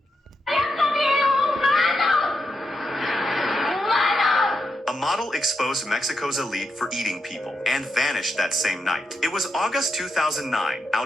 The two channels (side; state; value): both; normal; correlation 0.84